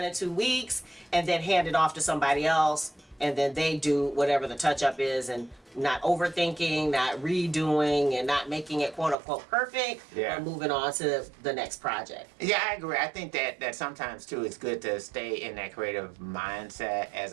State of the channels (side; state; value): left; drops out; at 9.2 s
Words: in 2 weeks and then hand it off to somebody else. And then they do whatever the touch up is and not overthinking, not redoing, and not making it quote unquote perfect. But moving on to the next project. Yeah, I agree. I think that sometimes too it's good to stay in that creative mindset